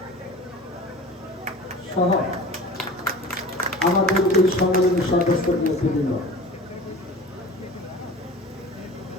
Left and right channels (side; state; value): both; normal; correlation 0.38